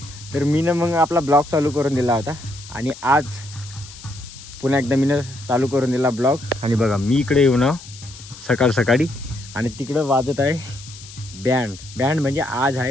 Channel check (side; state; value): left; noise; hiss, 17 dB below the sound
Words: तर मी ना मग आपला ब्लॉग चालू करून दिला होता. आणि आज पुन्हा एकदा मी चालू करून दिला ब्लॉग. आणि बघा मी इकडे येऊ ना सकाळ सकाळी आणि तिकडं वाजत आहे बँड म्हणजे आज